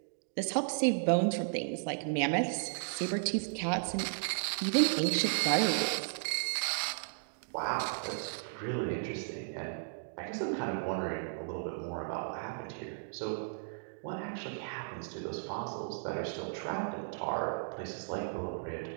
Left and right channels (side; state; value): left; silent; digital silence